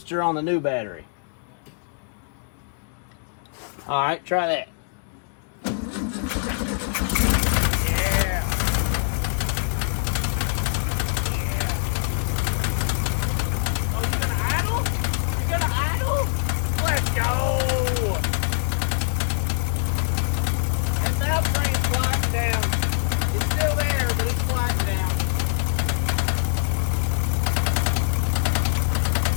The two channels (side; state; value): right; silent; digital silence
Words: on the new battery. All right, try that.